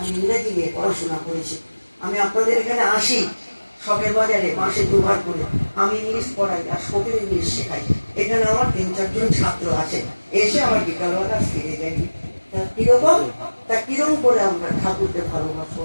ইংরেজি নিয়ে পড়াশোনা করেছি। আমি আপনাদের এখানে আসি শখের বাজারে মাসে 2 বার করে, আমি ইংলিশ পড়াই আর শখের ইংলিশ শেখাই। এখানে আমার 3-4 জন ছাত্র আছে, এসে আমার বিকালবেলা ফিরে যাই। কিরকম, তা কিরকম করে আমরা ঠাকুরকে ভালোবাসবো?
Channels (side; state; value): both; inverted; correlation -1.00